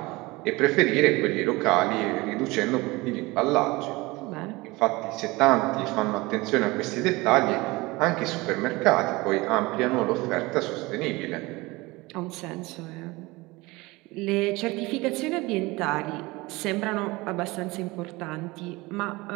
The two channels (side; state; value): left; quieter; 22.3 dB